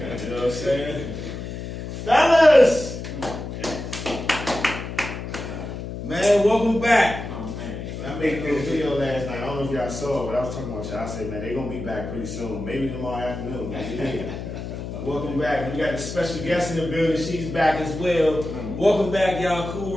know what I'm saying? Fellas! Man, welcome back. Oh, man. I made a little video last night. I don't know if y'all saw it, but I was talking about y'all. I said, man, they're going to be back pretty soon. Maybe tomorrow afternoon. Welcome back. We got a special guest in the building. She's back as well. Welcome back, y'all. Cool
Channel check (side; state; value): left; noise; hum, 7 dB below the sound